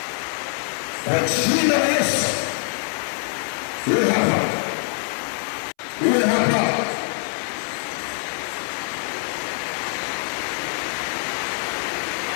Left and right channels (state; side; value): silent; right; 63 dB below the other